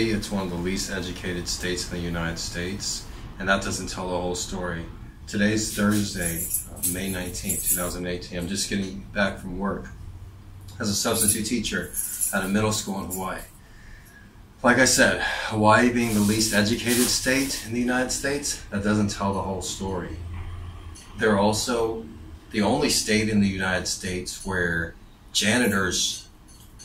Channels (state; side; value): identical; both; correlation 1.00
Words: it's one of the least educated states in the United States, and that doesn't tell the whole story. Today's Thursday, May 19th, 2018. I'm just getting back from work as a substitute teacher at a middle school in Hawaii. Like I said, Hawaii being the least educated state in the United States, that doesn't tell the whole story. They're also the only state in the United States where janitors